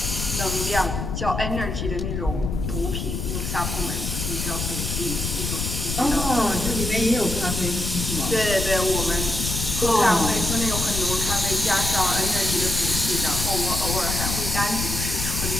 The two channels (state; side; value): noise; left; rumble, 3 dB below the sound